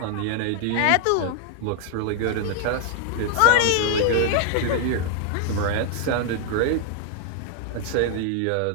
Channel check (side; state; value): both; different; correlation 0.00